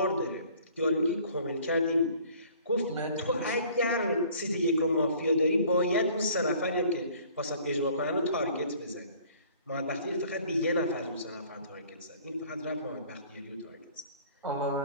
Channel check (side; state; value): both; inverted; correlation -0.53